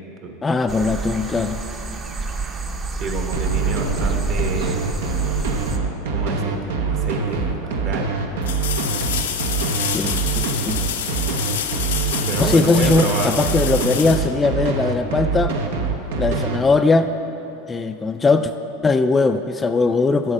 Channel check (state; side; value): normal; both; correlation 0.46